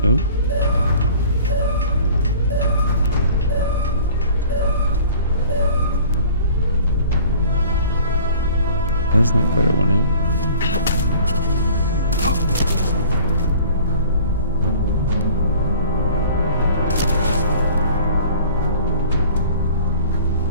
Oh. That's not what I wanted.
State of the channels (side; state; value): both; inverted; correlation -0.48